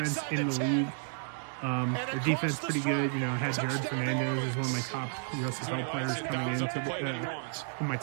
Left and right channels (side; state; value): left; silent; digital silence